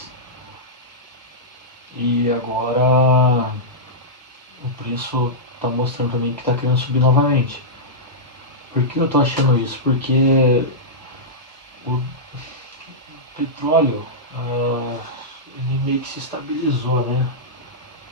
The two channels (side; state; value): both; normal; correlation -0.12